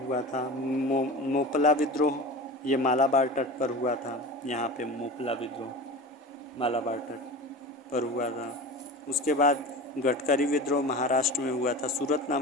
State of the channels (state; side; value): normal; both; correlation 0.32